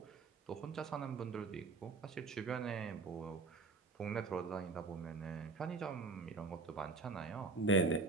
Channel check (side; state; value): left; quieter; 4.1 dB